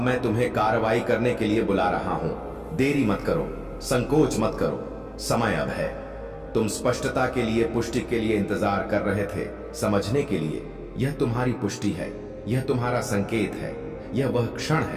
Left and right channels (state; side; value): identical; both; correlation 1.00